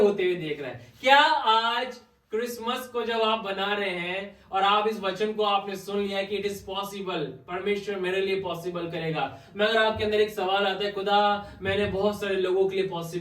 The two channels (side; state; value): both; identical; correlation 1.00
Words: हुए देख रहा है। क्या आज क्रिसमस को जब आप बना रहे हैं और आप इस वचन को आपने सुन लिया कि इट इज पॉसिबल, परमेश्वर मेरे लिए पॉसिबल करेगा, मगर आपके अंदर एक सवाल आता है, खुदा मैंने बहुत सारे लोगों के लिए